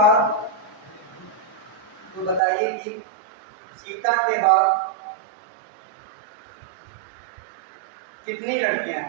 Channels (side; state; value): left; drops out; at 2.4 s